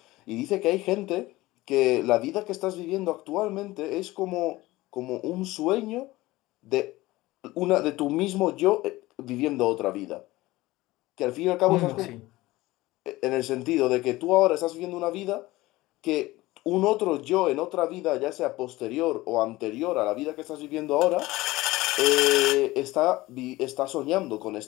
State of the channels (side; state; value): right; quieter; 18.8 dB